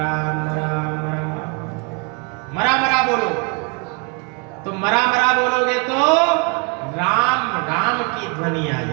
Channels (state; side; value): quieter; left; 32.7 dB